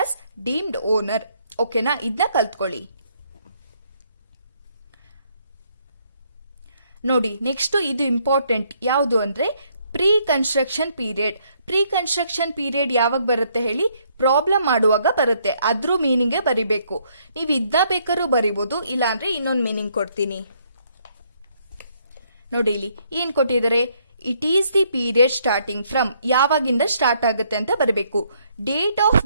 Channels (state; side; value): inverted; both; correlation -0.70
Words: as deemed owner. ಓಕೆನಾ, ಇದನ್ನ ಕಲ್ತ್ಕೊಳ್ಳಿ. ನೋಡಿ, next ಇದು important. ಯಾವುದು ಅಂದ್ರೆ pre construction period. Pre construction period ಯಾವಾಗ ಬರುತ್ತೆ ಹೇಳಿ, ಪ್ರಾಬ್ಲಮ್ ಮಾಡುವಾಗ ಬರುತ್ತೆ. ಅದ್ರ ಮೀನಿಂಗ್ ಬರಿಬೇಕು. ನೀವು ಇದನ್ನ ಬೇಕಾದ್ರೂ ಬರಿಬಹುದು, ಇಲ್ಲಾಂದ್ರೆ ಇನ್ನೊಂದು ಮೀನಿಂಗ್ ಕೊಡ್ತೀನಿ. ನೋಡಿ, ಇಲ್ಲಿ ಏನ್ ಕೊಟ್ಟಿದ್ದಾರೆ, it is the period starting from, ಯಾವಾಗಿಂದ ಸ್ಟಾರ್ಟ್ ಆಗುತ್ತೆ ಅಂತ ಬರಬೇಕು. Date of